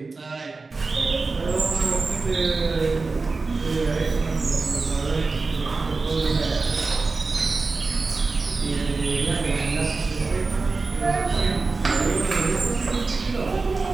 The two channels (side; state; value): left; quieter; 3.9 dB